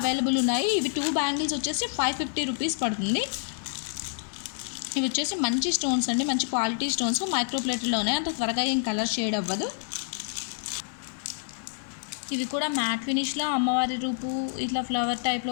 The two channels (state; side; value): silent; right; 59 dB below the other